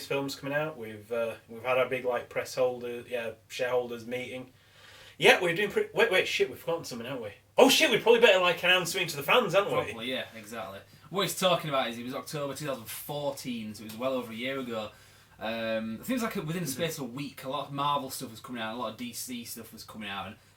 films coming out. We've had our big like shareholders meeting. Yeah, we're doing pretty. Wait, shit, we've forgotten something, haven't we? Oh shit, we probably better like announce something to the fans, haven't we? Probably, yeah, exactly. What he's talking about is it was October 2014, so it was well over a year ago. I think it was like within the space of a week, a lot of Marvel stuff was coming out, a lot of DC stuff was coming out, and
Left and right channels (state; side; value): identical; both; correlation 1.00